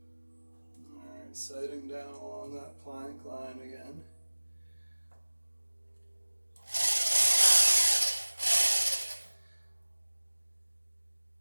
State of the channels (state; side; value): inverted; both; correlation -1.00